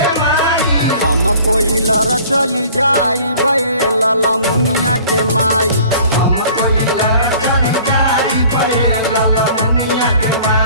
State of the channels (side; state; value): both; inverted; correlation -0.49